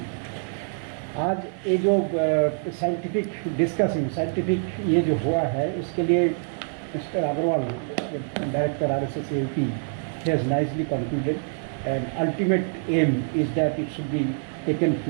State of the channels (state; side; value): silent; left; 61 dB below the other